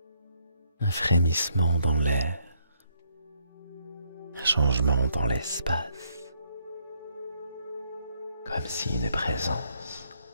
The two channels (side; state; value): both; inverted; correlation -0.71